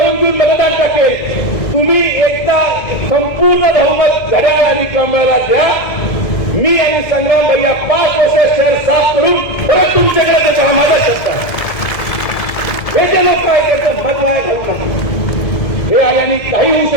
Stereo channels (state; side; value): late; right; 2.1 ms